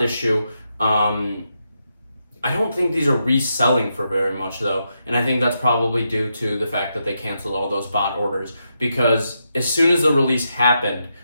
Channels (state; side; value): inverted; both; correlation -0.84